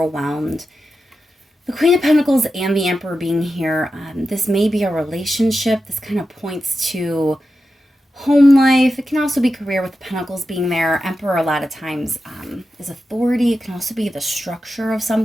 The Queen of Pentacles and the Emperor being here, this may be a relationship. This kind of points to home life. It can also be career with the Pentacles being there. Emperor a lot of times is authority. It can also be the structure of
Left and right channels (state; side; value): normal; both; correlation 0.90